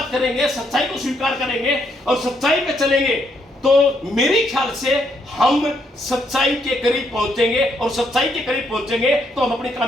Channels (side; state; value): both; normal; correlation 0.74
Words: करेंगे, सच्चाई को स्वीकार करेंगे और सच्चाई पे चलेंगे तो मेरे ख्याल से हम सच्चाई के करीब पहुंचेंगे और सच्चाई के करीब पहुंचेंगे तो हम अपनी